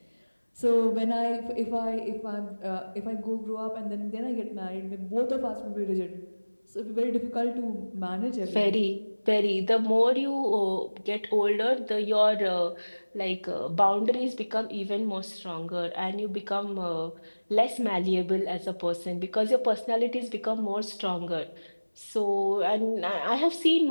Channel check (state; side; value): inverted; both; correlation -1.00